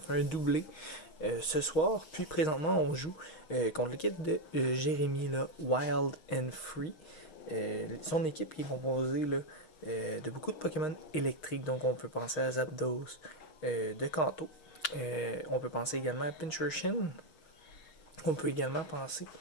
un doublé ce soir. Puis, présentement, on joue contre l'équipe de Jérémy, là, Wild and Free. Son équipe est composée là, de beaucoup de Pokémon électriques, donc on peut penser à Zapdos de Kanto. On peut penser également à Pincurchin. On peut également penser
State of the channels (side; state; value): right; late; 6.4 ms